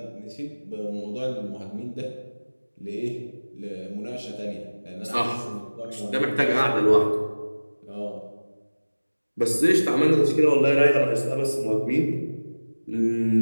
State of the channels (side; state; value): both; inverted; correlation -1.00